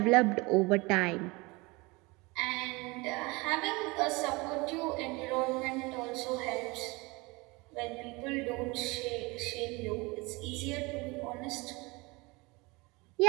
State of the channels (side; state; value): left; quieter; 25.0 dB